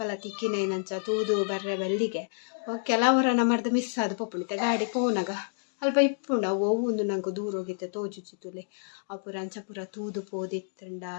ತಿಕ್ಕಿನೈನಂಚ ತೂದು ಬರ್ರೆ ಬೆಲ್ಲಿಗೆ ಕೆಲವರ ನಮ್ಮರ್ದು ಮಿಸ್ ಆದ ಪೊಪ್ಪುಣಿತ ಗಾಡಿ ಪೋನಾಗ ಅಲ್ಪ ಇಪ್ಪುಂಡ ಒಂದು ನಂಗೆ ದೂರ ಹೋಗಿತ್ತೆ ತೋಜುಚಿತುಲೆ ಅಪುರ ಅಂಚ ಪೂರ ತೂದು ಪೋದಿತ್ತಂಡ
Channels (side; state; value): right; silent; digital silence